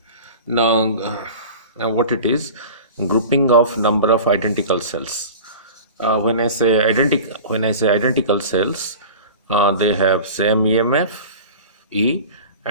Now, what it is? Grouping of number of identical cells. When I say identical cells, they have same EMF E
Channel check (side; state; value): both; inverted; correlation -0.36